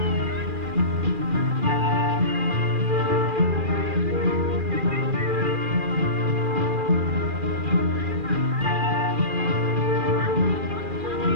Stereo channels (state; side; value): late; left; 2.4 ms